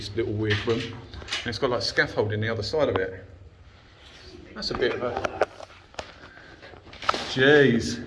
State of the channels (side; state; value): both; identical; correlation 1.00